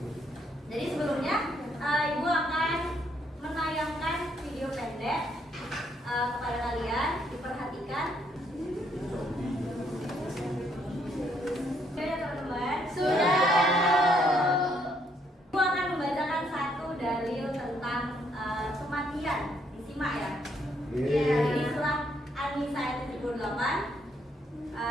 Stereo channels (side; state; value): both; normal; correlation 0.71